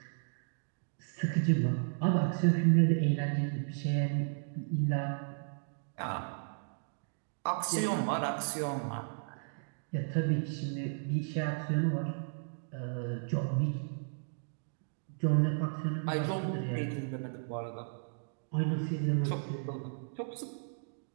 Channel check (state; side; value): silent; left; digital silence